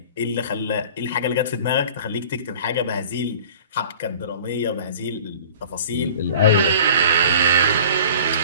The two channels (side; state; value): both; inverted; correlation -0.45